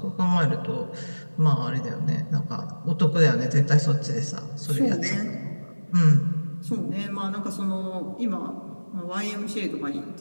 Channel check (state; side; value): inverted; both; correlation -1.00